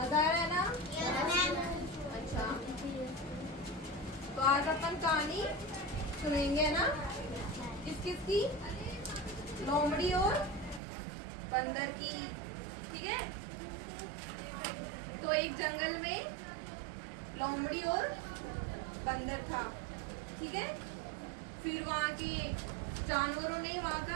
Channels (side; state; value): left; drops out; at 10.8 s